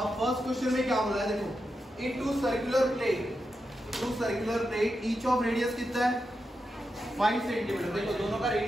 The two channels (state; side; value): normal; both; correlation 0.87